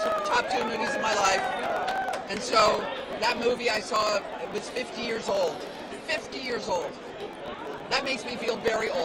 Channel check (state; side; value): identical; both; correlation 1.00